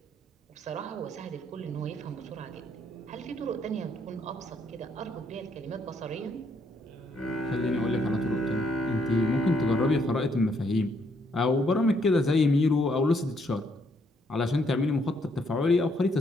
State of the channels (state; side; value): normal; both; correlation 0.72